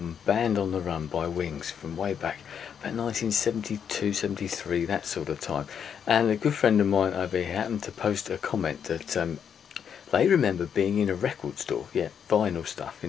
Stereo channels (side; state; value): right; quieter; 7.8 dB